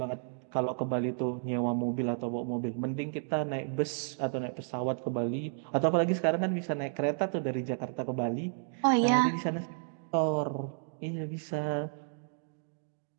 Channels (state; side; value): silent; left; digital silence